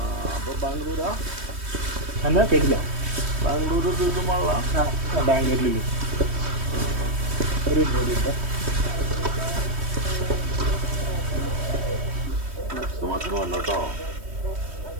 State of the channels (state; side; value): late; left; 3.2 ms